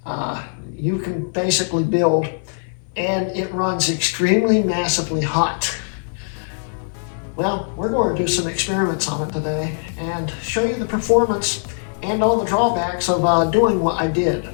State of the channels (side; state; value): right; silent; 56 dB below the other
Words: you can basically build, and it runs extremely massively hot. Well, we're going to do some experiments on it today and show you the performance and all the drawbacks of doing what I did.